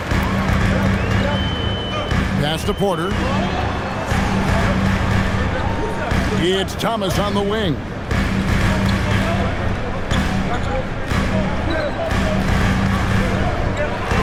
Pass to Porter. It's Thomas on the wing.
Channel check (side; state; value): both; identical; correlation 1.00